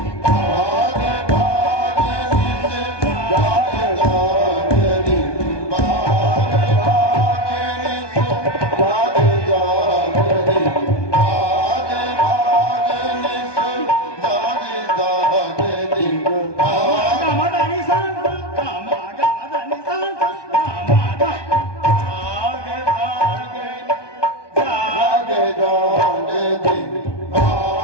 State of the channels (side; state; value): right; late; 1.2 ms